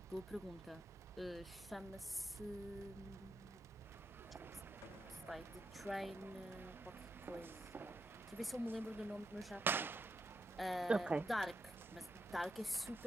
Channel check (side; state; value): both; normal; correlation 0.84